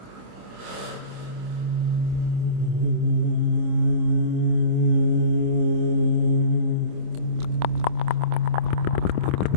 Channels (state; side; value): late; left; 26 ms